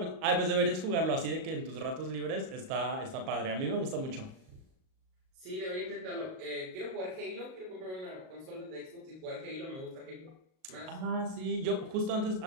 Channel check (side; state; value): left; late; 38 ms